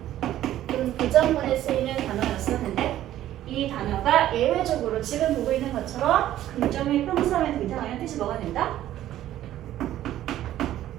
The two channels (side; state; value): left; quieter; 13.0 dB